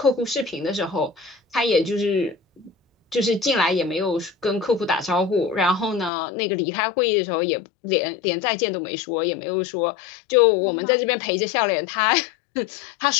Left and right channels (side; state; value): right; drops out; at 6.1 s